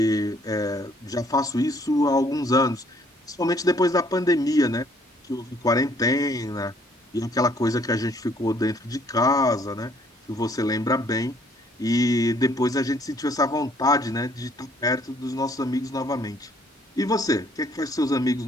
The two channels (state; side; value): normal; both; correlation 0.63